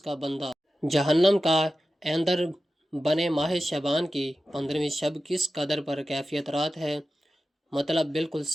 بندہ جہنم کا ایندھن بنے۔ ماہ شعبان کی 15ویں شب کس قدر پر کیفیت رات ہے، مطلب بالکل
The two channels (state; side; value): normal; both; correlation 0.93